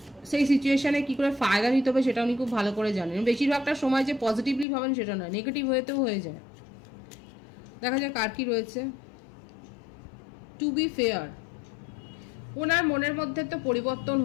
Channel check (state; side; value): drops out; right; at 4.7 s